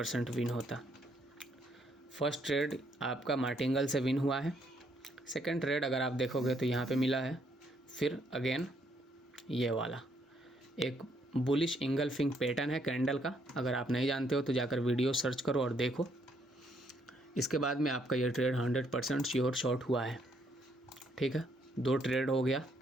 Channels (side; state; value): both; normal; correlation 0.71